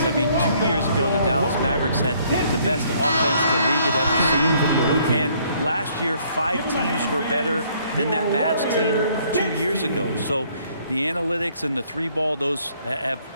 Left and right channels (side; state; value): both; inverted; correlation -0.64